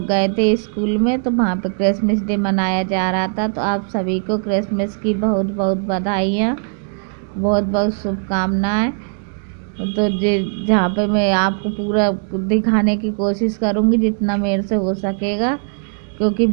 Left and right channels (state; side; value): silent; left; 62 dB below the other